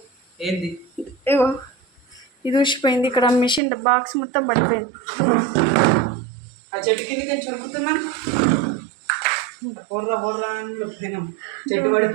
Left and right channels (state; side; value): drops out; left; at 3.6 s